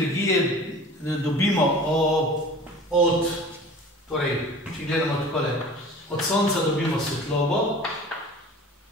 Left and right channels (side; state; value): both; normal; correlation 0.42